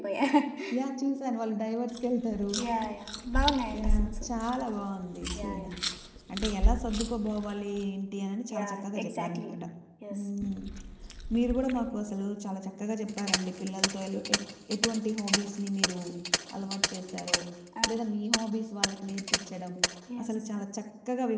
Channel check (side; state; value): both; identical; correlation 1.00